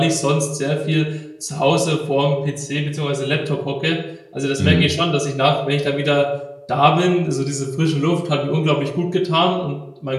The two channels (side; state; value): both; identical; correlation 1.00